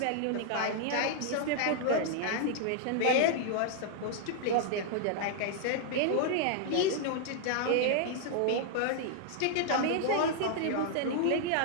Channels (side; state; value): both; different; correlation -0.01